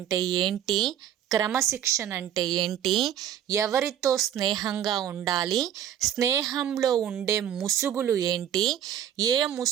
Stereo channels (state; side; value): quieter; left; 10.4 dB